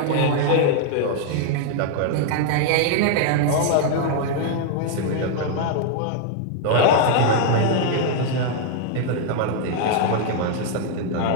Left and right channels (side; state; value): both; different; correlation 0.00